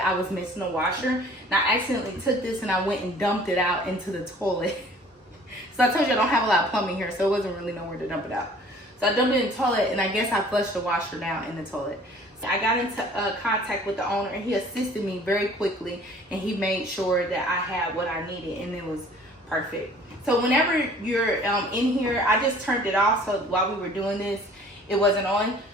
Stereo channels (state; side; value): normal; both; correlation 0.51